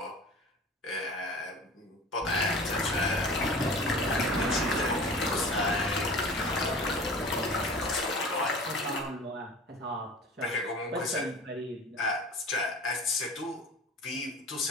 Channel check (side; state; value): both; normal; correlation 0.40